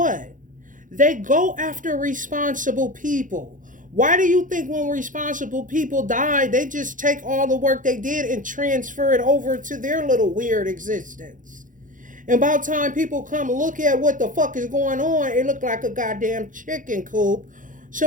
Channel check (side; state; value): left; late; 0.38 ms